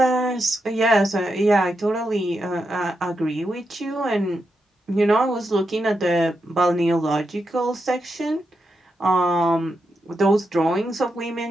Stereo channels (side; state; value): both; normal; correlation 0.85